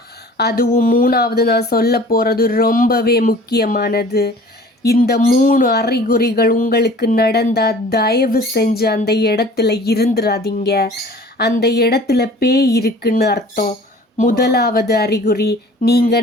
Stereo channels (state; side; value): normal; both; correlation 0.47